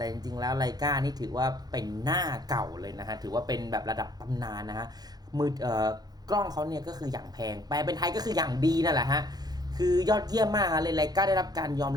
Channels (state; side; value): late; left; 0.19 ms